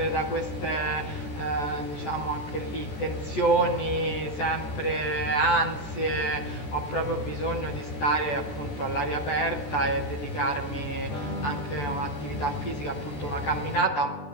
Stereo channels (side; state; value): right; late; 14 ms